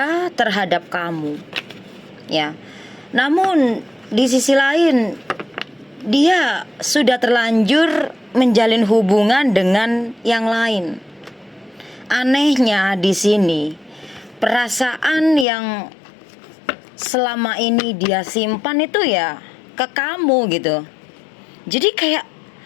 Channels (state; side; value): drops out; right; at 15.5 s